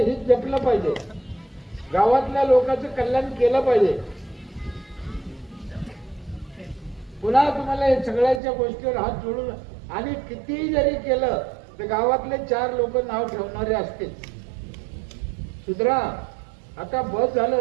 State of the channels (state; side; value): drops out; left; at 8.4 s